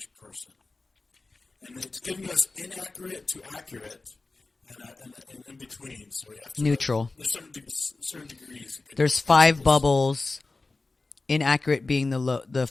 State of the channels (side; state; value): right; quieter; 3.5 dB